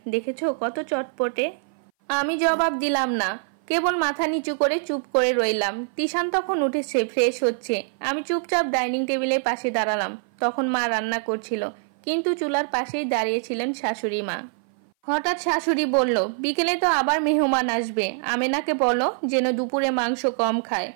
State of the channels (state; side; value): silent; left; 58 dB below the other